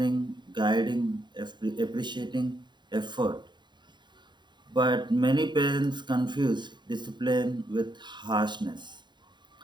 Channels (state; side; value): late; left; 0.22 ms